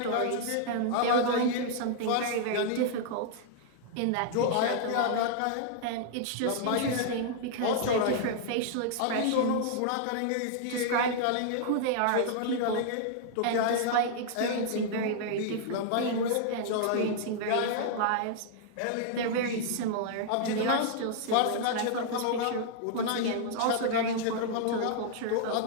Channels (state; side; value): different; both; correlation -0.01